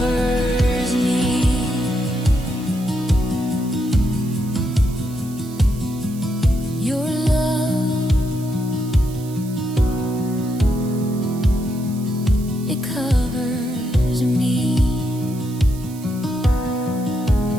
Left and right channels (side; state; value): right; noise; hiss, 19 dB below the sound